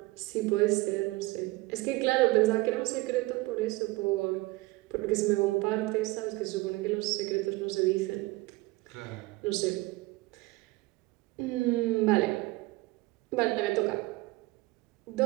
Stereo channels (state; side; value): quieter; left; 21.3 dB